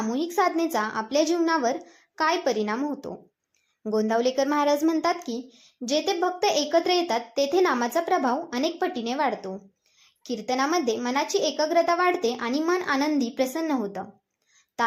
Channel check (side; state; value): both; identical; correlation 1.00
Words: साधनेचा आपल्या जीवनावर काय परिणाम होतो. गोंदावलेकर महाराज म्हणतात की जेथे भक्त एकत्र येतात तेथे नामाचा प्रभाव अनेक पटीने वाढतो. कीर्तनामध्ये मनाची एकाग्रता वाढते आणि मन आनंदी प्रसन्न होतं.